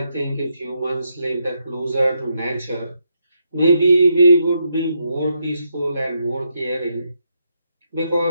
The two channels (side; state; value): both; inverted; correlation -0.80